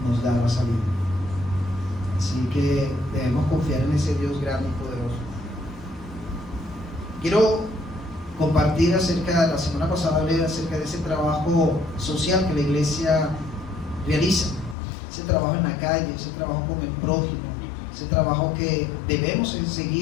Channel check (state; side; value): drops out; right; at 14.8 s